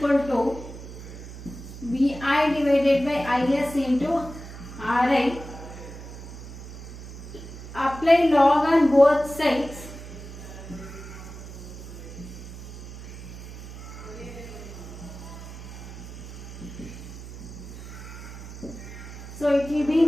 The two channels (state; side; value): noise; right; hum, 12 dB below the sound